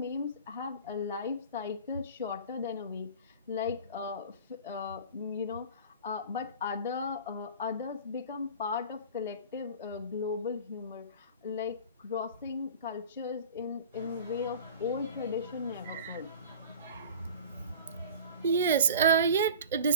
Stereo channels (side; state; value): both; inverted; correlation -0.39